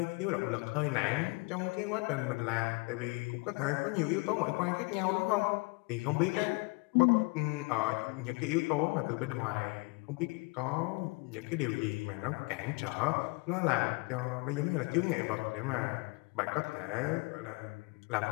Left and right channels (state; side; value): quieter; right; 27.9 dB